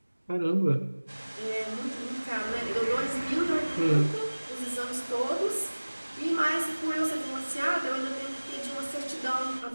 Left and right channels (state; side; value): inverted; both; correlation -1.00